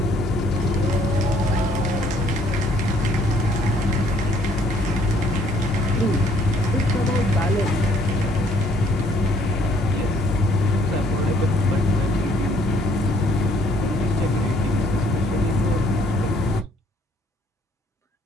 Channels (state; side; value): normal; both; correlation 0.63